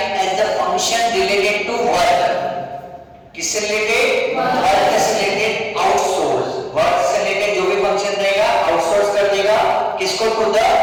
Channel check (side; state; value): both; identical; correlation 1.00